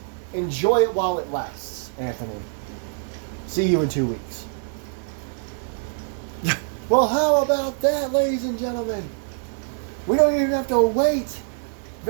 enjoy it while it lasts, Anthony. See you in 2 weeks. Well, how about that, ladies and gentlemen? We don't even have to wait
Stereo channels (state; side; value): silent; left; digital silence